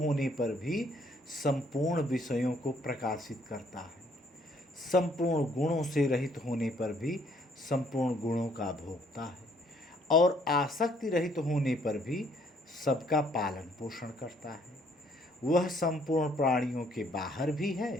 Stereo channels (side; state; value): both; normal; correlation 0.65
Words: पर भी संपूर्ण विषयों को प्रकाशित करता है। संपूर्ण गुणों से रहित होने पर भी संपूर्ण गुणों का भोगता है, और आसक्ति रहित होने पर भी सबका पालन पोषण करता है। वह संपूर्ण प्राणियों के बाहर भी